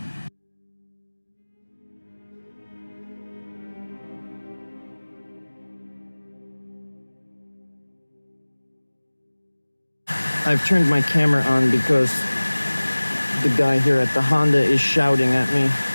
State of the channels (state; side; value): inverted; both; correlation -1.00